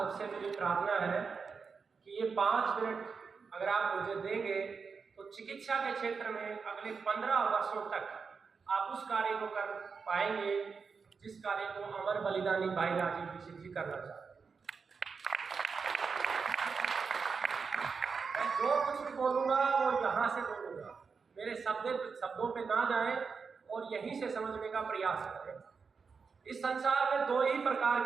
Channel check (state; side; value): quieter; left; 5.3 dB